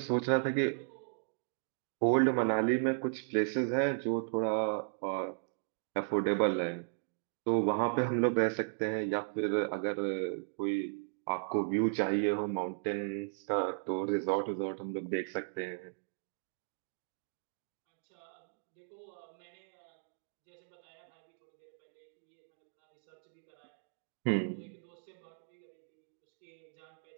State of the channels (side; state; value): left; silent; digital silence